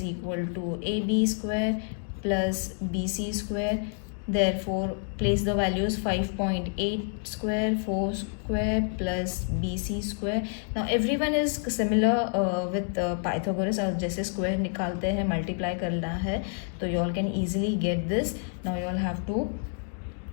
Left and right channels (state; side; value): silent; right; 59 dB below the other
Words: equal to AB square plus BC square. Therefore place the values 5.8 square, 4 square plus BC square. Now everyone is similar with Pythagoras. और जैसे square निकालते हैं multiply करना है तो you all can easily get this. Now you all have to